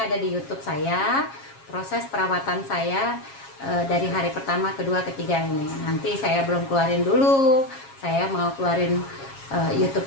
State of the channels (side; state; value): right; late; 7.3 ms